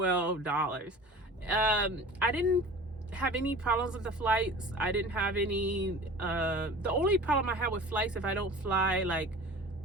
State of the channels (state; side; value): normal; both; correlation 0.39